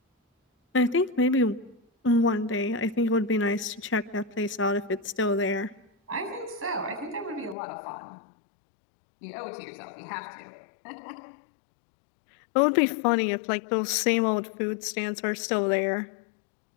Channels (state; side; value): drops out; right; at 7.6 s